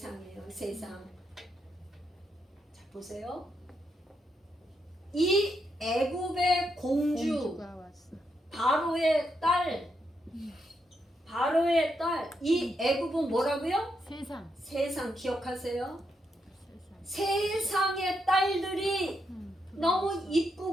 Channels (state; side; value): normal; both; correlation 0.81